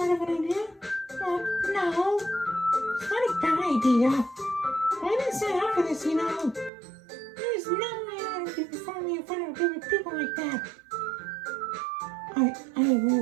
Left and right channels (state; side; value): drops out; left; at 6.7 s